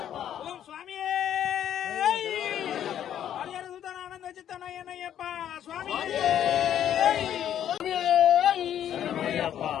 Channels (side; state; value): right; quieter; 10.3 dB